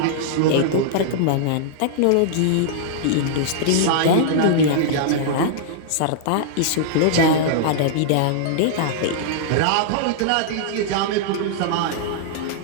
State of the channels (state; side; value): different; both; correlation -0.02